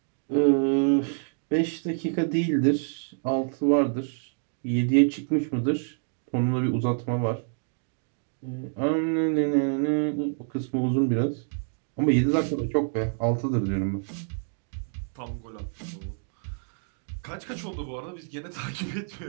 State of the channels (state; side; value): silent; left; 60 dB below the other